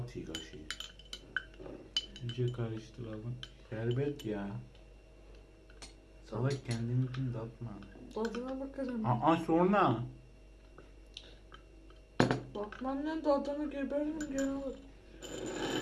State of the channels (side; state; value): both; identical; correlation 1.00